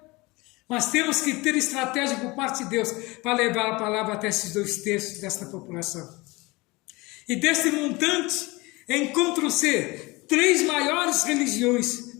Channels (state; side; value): quieter; right; 23.4 dB